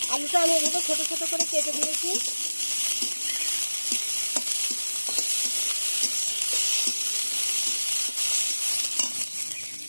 আলুটা আমি এগুলো ছোট ছোট করে কেটে দিয়েছি।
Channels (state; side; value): inverted; both; correlation -1.00